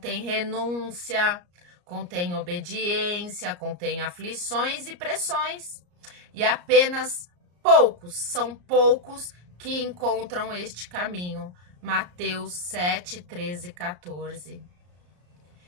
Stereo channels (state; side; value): late; left; 34 ms